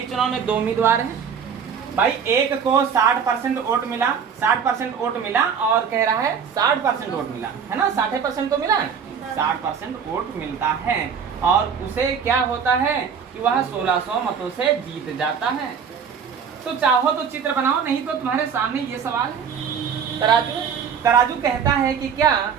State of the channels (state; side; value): quieter; left; 6.9 dB